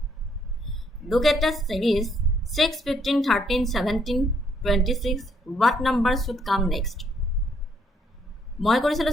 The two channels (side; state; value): both; normal; correlation 0.70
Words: Look at the series 6 15 13 17 26 what number should come next মই কৰিছিলো